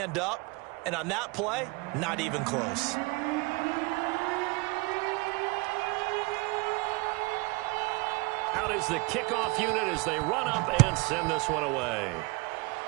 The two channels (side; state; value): left; quieter; 25.9 dB